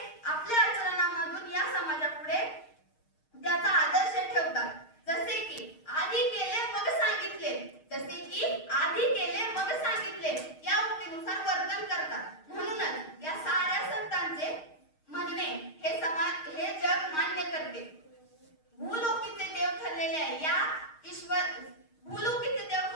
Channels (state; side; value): late; right; 6.5 ms